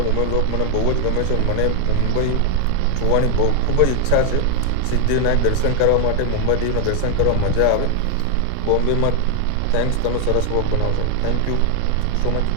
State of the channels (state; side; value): different; both; correlation 0.00